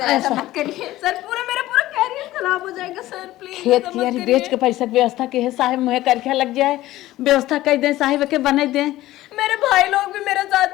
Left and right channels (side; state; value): right; quieter; 16.0 dB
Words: ऐसा मत करिए सर, पूरा मेरा खराब हो जाएगा सर, प्लीज खेत कियारी बेच के पैसा के व्यवस्था के है साहब, मुहे करके लग जाए, व्यवस्था कर दे साहिब के बना दे। मेरे भाई लोग भी मेरे